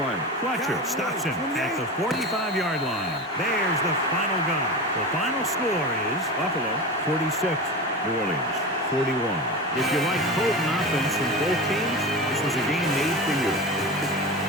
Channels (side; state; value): both; normal; correlation 0.27